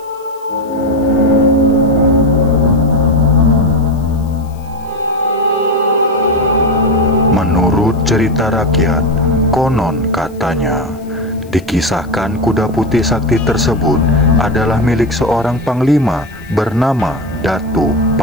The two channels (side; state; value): left; noise; hiss, 29 dB below the sound